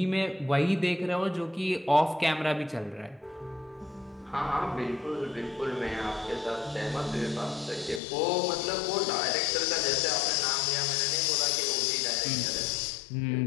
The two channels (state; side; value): drops out; right; at 8.0 s